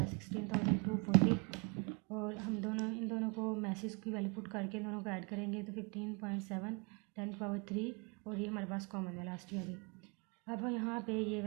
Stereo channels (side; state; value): left; quieter; 33.0 dB